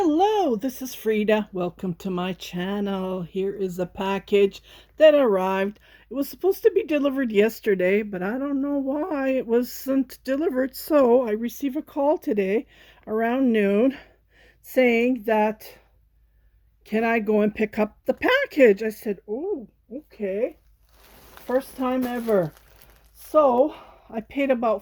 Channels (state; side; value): identical; both; correlation 1.00